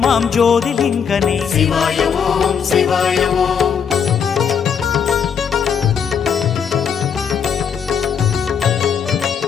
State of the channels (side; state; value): right; quieter; 7.2 dB